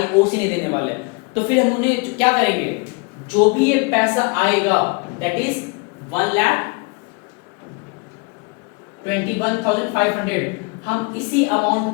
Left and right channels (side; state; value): right; quieter; 30.2 dB